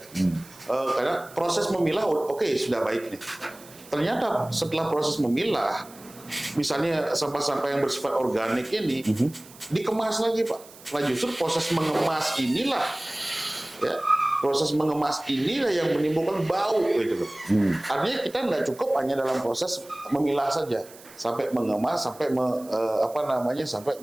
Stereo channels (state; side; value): noise; right; hiss, 21 dB below the sound